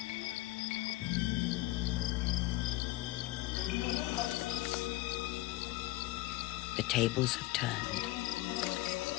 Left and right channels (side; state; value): right; quieter; 18.0 dB